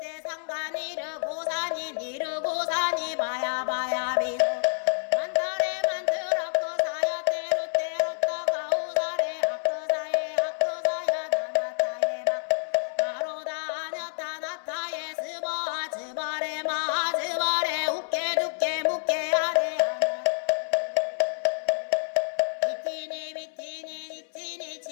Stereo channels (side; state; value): right; silent; 59 dB below the other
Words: 상가니르 고사니 니르 고사니 바야 바야 비소